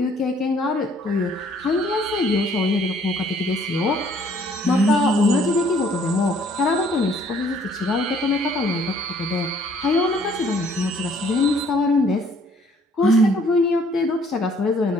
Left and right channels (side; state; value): both; normal; correlation 0.61